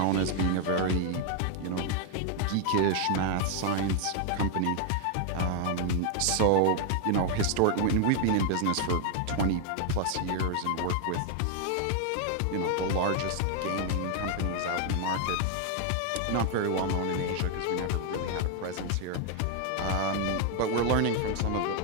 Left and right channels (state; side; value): different; both; correlation 0.00